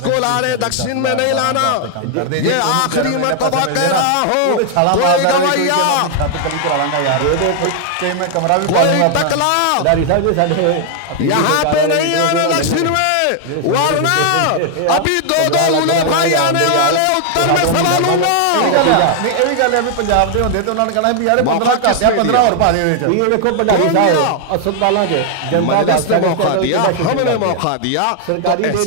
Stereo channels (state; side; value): different; both; correlation 0.00